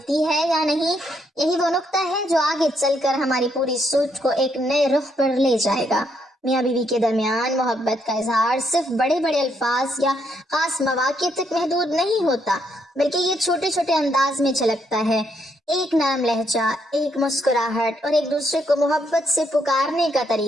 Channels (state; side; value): normal; both; correlation 0.75